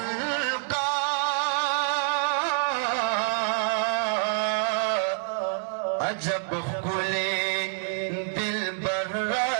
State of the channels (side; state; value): left; silent; 60 dB below the other